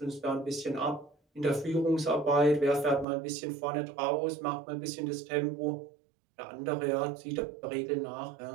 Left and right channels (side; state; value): left; drops out; at 3.1 s